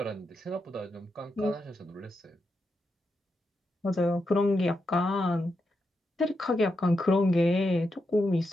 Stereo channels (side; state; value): both; normal; correlation 0.85